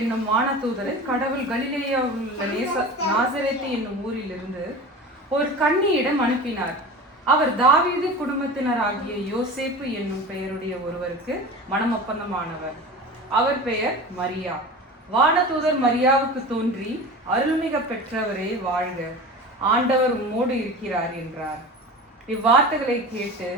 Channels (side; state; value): both; normal; correlation 0.33